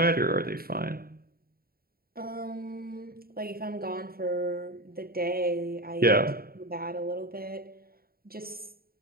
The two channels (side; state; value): left; late; 0.44 ms